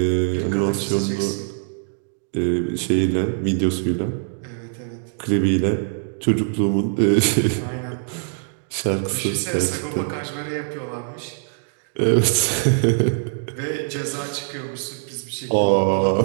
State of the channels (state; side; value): silent; left; digital silence